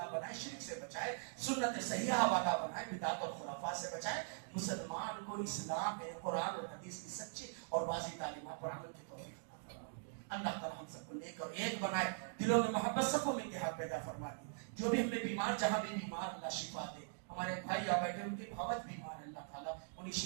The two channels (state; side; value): silent; left; digital silence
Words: بنائے, شرک سے بچائے, سنت صحیحہ والا بنائے, بدعت اور خرافات سے بچائے. مسلمان کو اسلام میں قرآن اور حدیث کی سچی اور واضح تعلیمات پر عمل کی توفیق عطا فرمائے. اللہ تعالیٰ ہم سب کو نیک اور ایک بنائے, دلوں میں محبت سب کو میں اتحاد پیدا فرما دی. جو بھی ہم نے بیمار جہاں بھی بیمار اللہ شفا دے. ہمارے بھائی یا بیٹھے ان کی بہت بیمار ہے, اللہ تعالیٰ انہیں